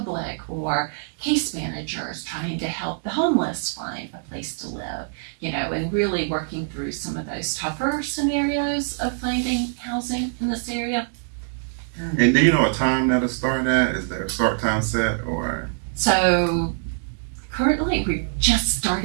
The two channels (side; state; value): left; silent; digital silence